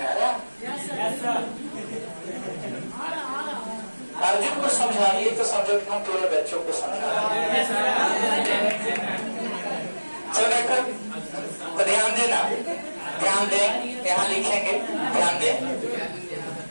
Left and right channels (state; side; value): inverted; both; correlation -1.00